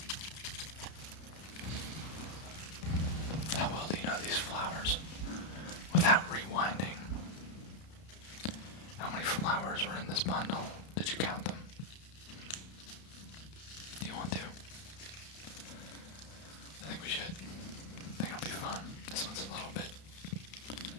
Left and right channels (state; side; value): late; right; 32 ms